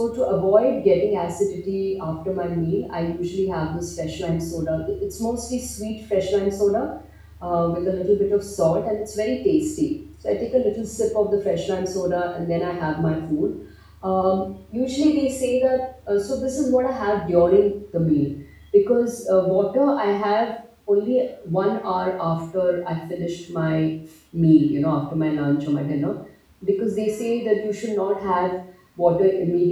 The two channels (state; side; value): identical; both; correlation 1.00